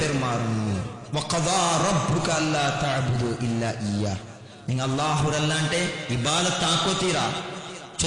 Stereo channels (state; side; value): identical; both; correlation 1.00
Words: വഖദാ റബ്ബുക അല്ലാ തഅബുദു ഇല്ലാ ഇയ്യാ നിങ്ങൾ അല്ലാഹുരല്ലാണ്ടെ ഇബാദത്ത് ആക്കോതീരാ